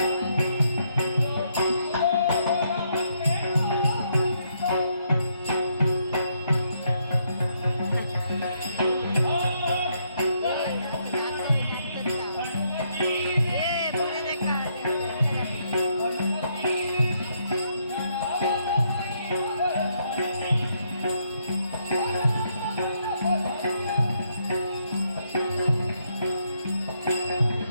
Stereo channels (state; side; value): inverted; both; correlation -0.75